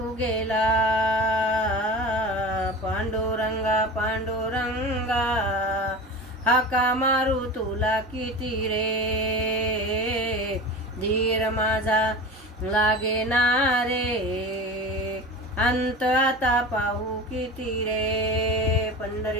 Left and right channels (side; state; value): both; normal; correlation 0.31